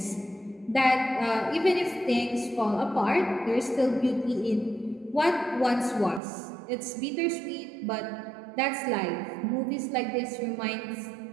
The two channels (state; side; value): drops out; left; at 6.2 s